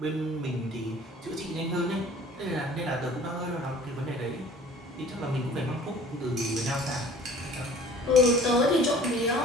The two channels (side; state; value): both; normal; correlation 0.48